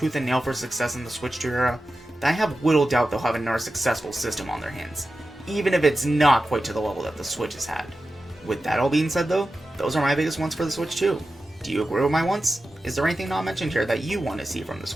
and nail for success in the Switch 2 era, then I have little doubt they'll have another successful system on their hands, even if it's not quite to the level that the Switch has had. With that all being said though, those are my biggest wants for the Switch 2. Do you agree with my wants? Is there anything not mentioned here that you want to see from the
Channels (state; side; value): normal; both; correlation 0.93